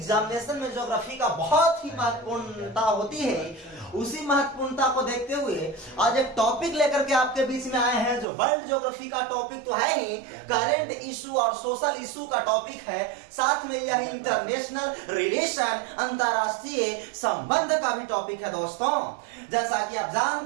में ज्योग्राफी का बहुत ही महत्वपूर्णता होती है। उसी महत्वपूर्णता को देखते हुए आज एक टॉपिक लेकर के आपके बीच में आए हैं, जो वर्ल्ड ज्योग्राफी का टॉपिक तो है ही, करंट इशू और सोशल इशू का टॉपिक है। साथ में यह इंटरनेशनल रिलेशन, अंतरराष्ट्रीय संबंध का भी टॉपिक है। दोस्तों, जैसा कि आप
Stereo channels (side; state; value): left; drops out; at 8.2 s